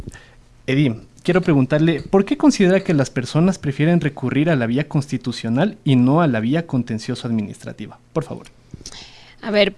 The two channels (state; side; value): identical; both; correlation 1.00